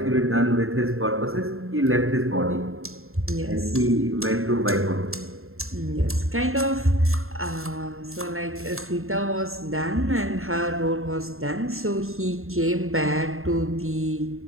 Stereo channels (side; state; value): left; late; 0.61 ms